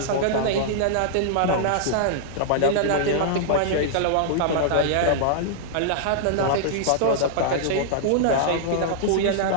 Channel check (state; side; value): different; both; correlation -0.01